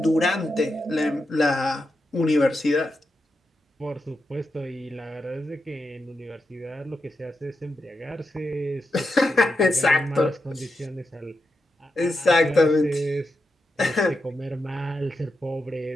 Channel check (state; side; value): normal; both; correlation 0.86